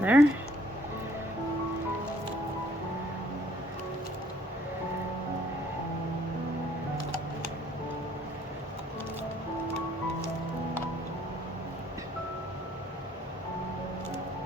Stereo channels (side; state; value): both; normal; correlation 0.62